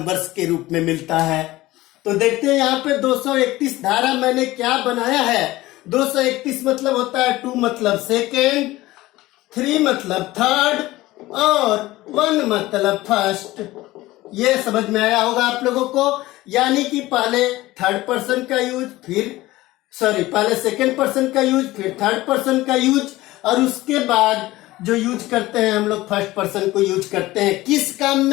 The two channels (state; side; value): quieter; right; 17.9 dB